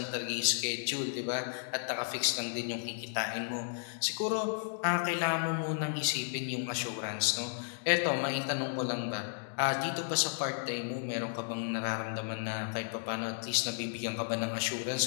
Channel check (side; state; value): right; silent; digital silence